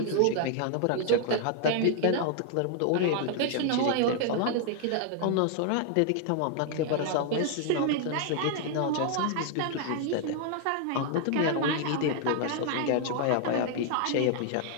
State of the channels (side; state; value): both; different; correlation 0.00